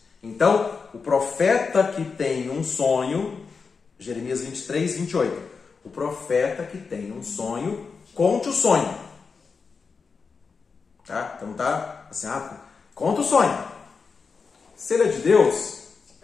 Então, o profeta que tem um sonho, Jeremias 23, 28, o profeta que tem um sonho, conte o sonho. Tá? Então tá assim, conta o sonho. Se ele é de Deus,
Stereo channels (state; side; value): quieter; right; 5.1 dB